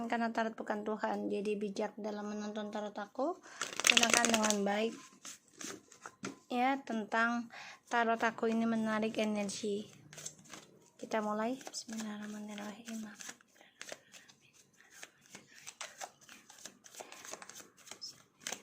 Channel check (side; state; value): both; identical; correlation 1.00